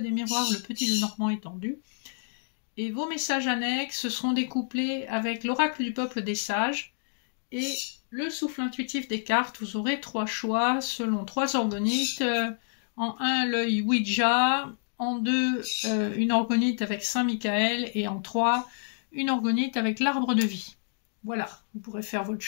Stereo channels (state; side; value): silent; right; digital silence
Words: miroirs, le petit Lenormand étendu. Et vos messages annexes, ce seront des couplets avec l'oracle du peuple des sages et le souffle intuitif des cartes. Vous aurez 3 choix selon 3 organites. En 1, l'œil Ouija. En 2, une organite avec Saint-Michael. Et en 3, une organite avec l'arbre de vie. Voilà, vous pourrez faire votre